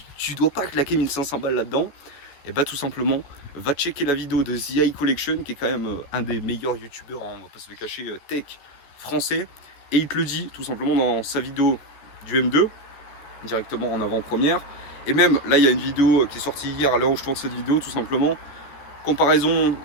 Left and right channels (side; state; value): right; late; 14 ms